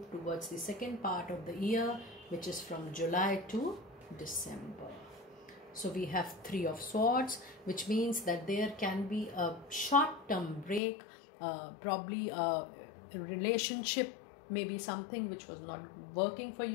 towards the second part of the year, which is from July to December. So we have Three of Swords, which means that there can be a short-term break, probably a relationship, maybe something which was not working for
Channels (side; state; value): right; drops out; at 10.8 s